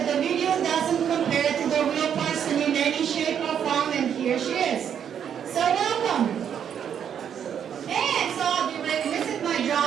years. So welcome. And so I'll be remiss in my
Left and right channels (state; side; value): quieter; left; 8.5 dB